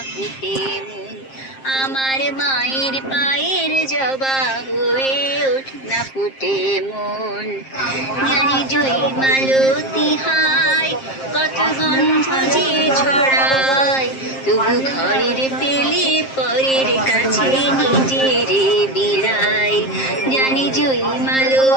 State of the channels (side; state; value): right; late; 7.5 ms